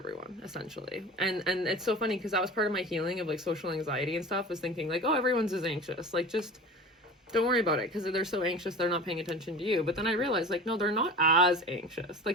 essentially. And it's so funny because that was part of my healing of like social anxiety and stuff, was thinking like, oh, everyone's as anxious, like just don't worry about it, because they're so anxious they're not paying attention to you. But then I realized like, no, they're not as anxious.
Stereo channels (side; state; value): both; normal; correlation 0.36